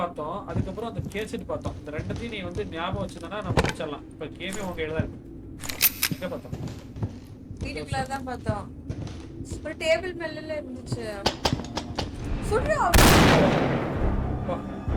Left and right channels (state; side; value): identical; both; correlation 1.00